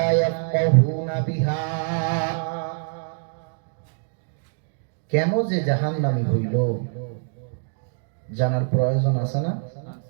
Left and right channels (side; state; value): left; silent; digital silence